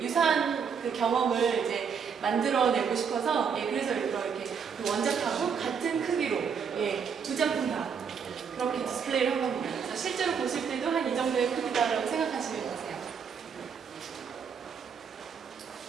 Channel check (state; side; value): quieter; left; 6.6 dB